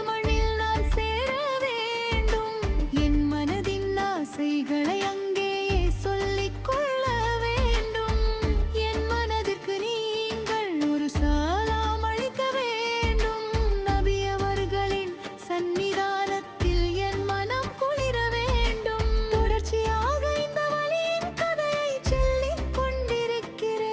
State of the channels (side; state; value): both; identical; correlation 1.00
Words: மண்ணில் நான் சேர வேண்டும். என் மனதின் ஆசைகளை அங்கேயே சொல்லிக் கொள்ள வேண்டும். என் மனதிற்கு நீங்கள் ஒரு சலாம் அளிக்க வேண்டும். நபி அவர்களின் சந்நிதானத்தில் என் மனம் குளிர வேண்டும். தொடர்ச்சியாக இந்த வலியின் கதையை சொல்லிக்